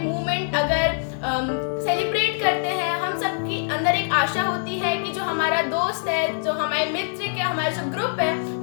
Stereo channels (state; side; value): silent; right; digital silence